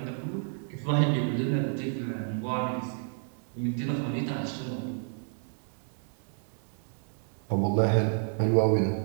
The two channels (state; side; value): silent; left; 58 dB below the other